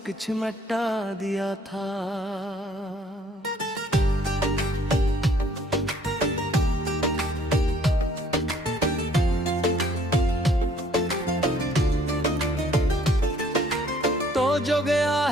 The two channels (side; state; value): both; normal; correlation 0.60